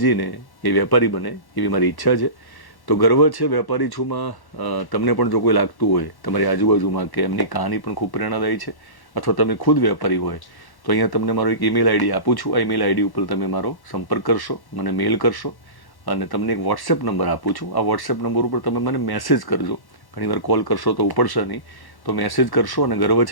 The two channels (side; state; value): right; late; 1.1 ms